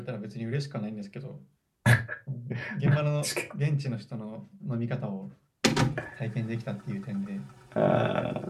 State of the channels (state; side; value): identical; both; correlation 1.00